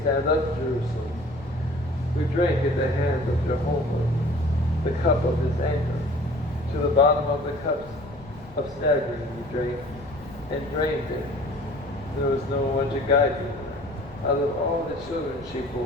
stand up, Jerusalem. We drank at the hand of Jehovah the cup of his anger. To the bottom of the cups of staggering we drank, and drained it. There was no one to guide me. Out of all the children she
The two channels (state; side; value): noise; left; rumble, 20 dB below the sound